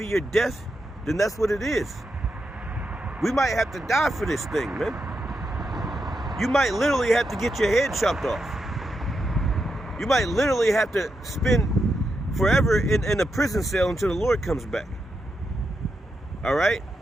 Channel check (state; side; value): normal; both; correlation 0.85